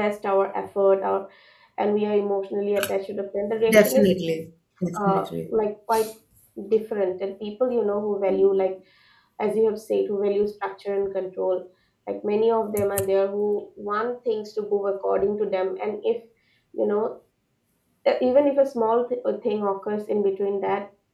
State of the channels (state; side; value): identical; both; correlation 1.00